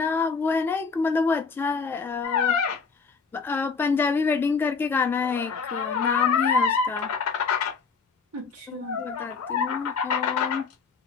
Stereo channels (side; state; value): right; quieter; 5.2 dB